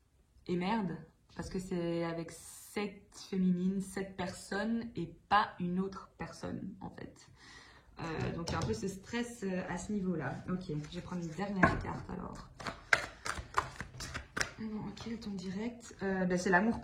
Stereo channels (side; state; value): both; identical; correlation 1.00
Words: merde, parce que c'est avec cette féminine, cette personne et pas une autre personne, en fait. Donc, il y a un peu ce stress à ce niveau-là. Ok, je vais prendre une dernière carte alors. Bon, ok, le ton direct. C'est l'amour